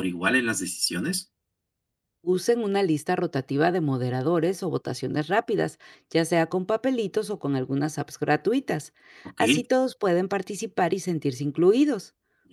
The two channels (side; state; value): both; identical; correlation 1.00